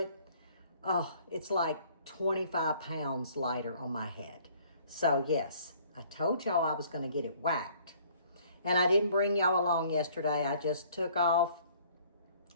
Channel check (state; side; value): inverted; both; correlation -0.58